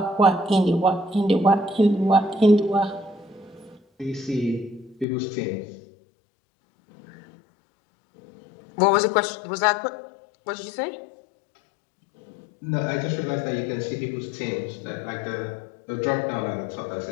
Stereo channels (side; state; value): right; drops out; at 5.1 s